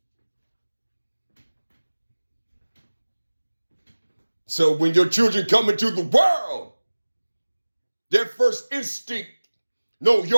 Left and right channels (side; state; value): both; inverted; correlation -1.00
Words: So when your children come into the world, their first instinct, no,